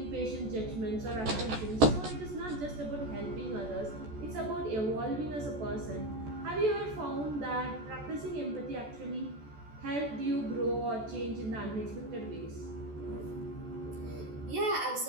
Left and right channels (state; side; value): late; left; 14 ms